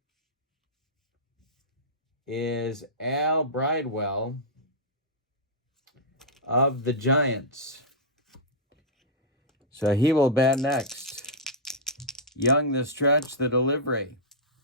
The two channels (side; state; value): both; normal; correlation -0.11